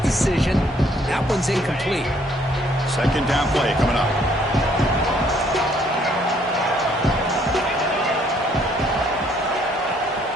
That one's incomplete. Second down play coming up.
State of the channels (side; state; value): both; normal; correlation 0.65